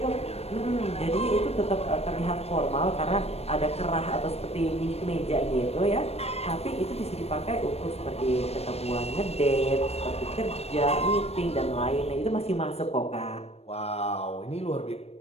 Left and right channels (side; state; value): right; late; 0.30 ms